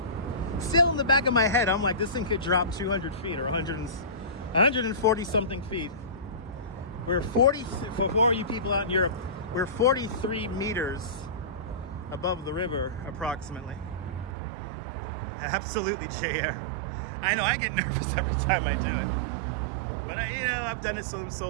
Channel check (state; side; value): drops out; left; at 14.4 s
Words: still in the back of my head, I'm like, this thing could drop 200 feet or 140 something feet. We're 40, for you people out in Europe, we're 43 meters above the river, approximately. Absolutely, Jair. I know I get nervous every time I do it, but I've done it